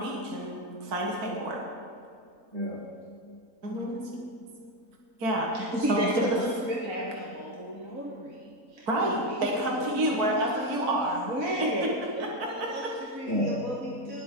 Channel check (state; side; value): late; left; 3.9 ms